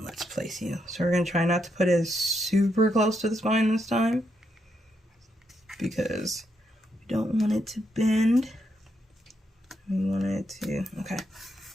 let's place you. So we're going to try not to put it super close to the spine this time because we don't want it to bend. We want it to, okay.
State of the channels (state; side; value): normal; both; correlation 0.80